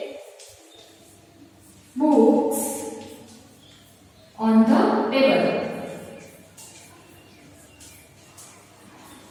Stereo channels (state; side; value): identical; both; correlation 1.00